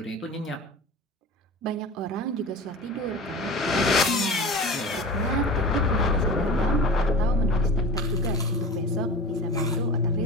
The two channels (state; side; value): normal; both; correlation 0.34